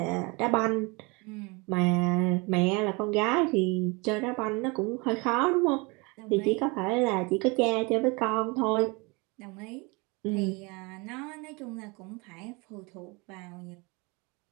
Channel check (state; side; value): quieter; left; 27.7 dB